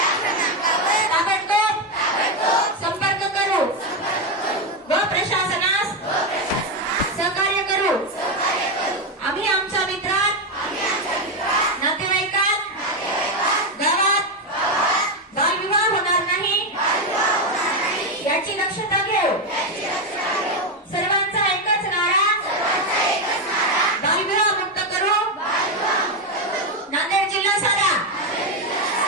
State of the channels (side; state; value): both; normal; correlation 0.08